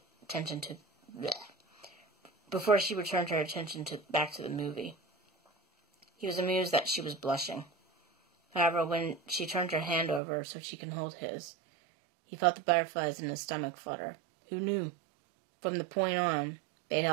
attention back to the movie. He was amused that she was blushing. However, when she turned her hand over so she could hold his, he felt the butterflies in his stomach flutter. Who knew? From the point on, they'd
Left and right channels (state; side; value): drops out; left; at 10.2 s